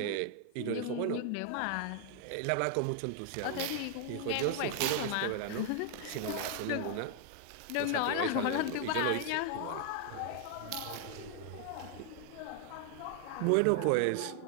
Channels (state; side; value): different; both; correlation 0.00